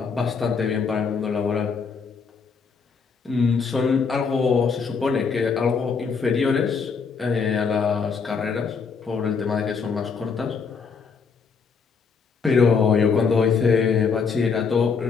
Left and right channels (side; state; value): right; quieter; 5.5 dB